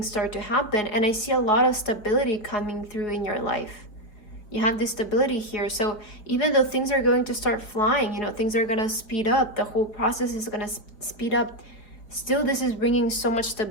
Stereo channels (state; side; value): late; right; 4.7 ms